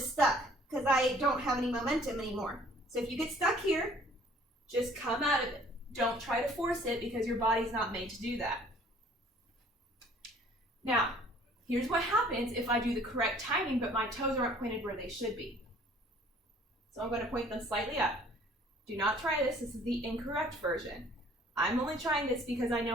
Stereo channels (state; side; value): normal; both; correlation 0.55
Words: stuck because I don't have any momentum anymore. So if you get stuck here, just come out of it. Don't try to force it because your body's not made to do that. Now, here's what happens if I do the correct timing, but my toes aren't pointed where they should be. So I'm going to point them slightly up. Do not try this. This is the incorrect version. I'm only trying this because I